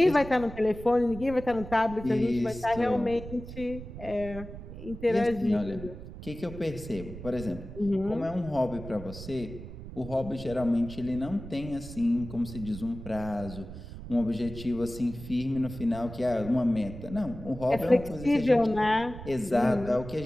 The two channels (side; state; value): right; noise; rumble, 12 dB below the sound